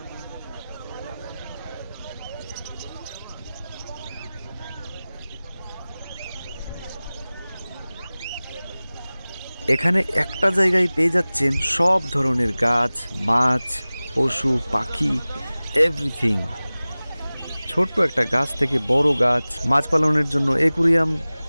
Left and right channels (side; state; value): both; inverted; correlation -0.98